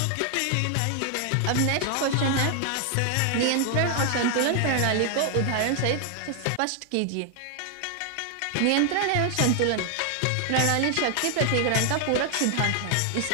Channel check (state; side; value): different; both; correlation 0.00